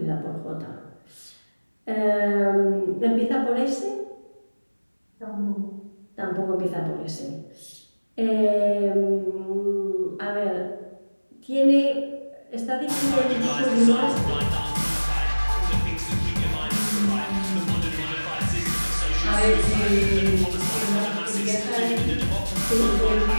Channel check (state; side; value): inverted; both; correlation -1.00